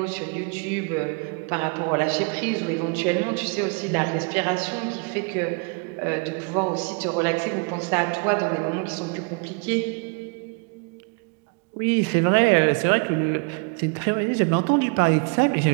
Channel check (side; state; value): left; quieter; 34.1 dB